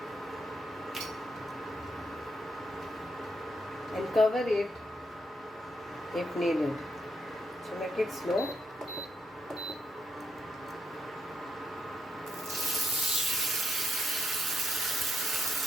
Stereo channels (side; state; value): both; normal; correlation 0.79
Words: And cover it if needed. So make it slow.